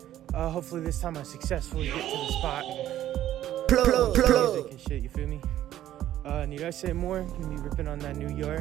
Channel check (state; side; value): quieter; left; 12.6 dB